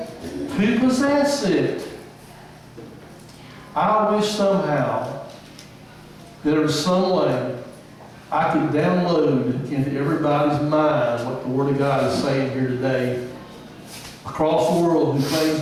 possess it. I wish somehow there was some way I could download into everybody's mind what the Word of God is saying here today across the world who claims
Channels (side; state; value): both; identical; correlation 1.00